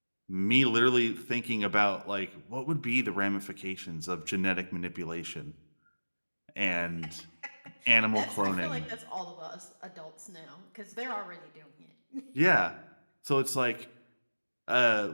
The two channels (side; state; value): both; inverted; correlation -1.00